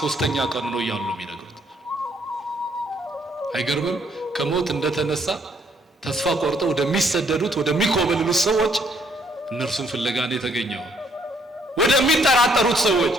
ሦስተኛ ቀኑ ነው እያሉ ነው የሚነግሩት። አይገርምም? ከሞት እንደተነሳ ተስፋ ቆርጠው ወደሚሰደዱት ወደሚኮበልሉት ሰዎች እነርሱን ፍለጋ ነው የተገኘው። ወደሚጠራጠሩት ሰዎች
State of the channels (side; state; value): both; normal; correlation 0.68